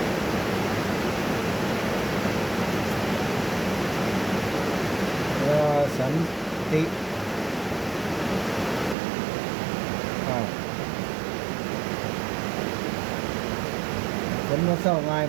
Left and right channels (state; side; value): drops out; left; at 9.0 s